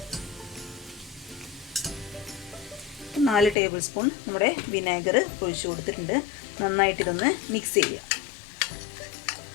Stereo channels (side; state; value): right; drops out; at 3.6 s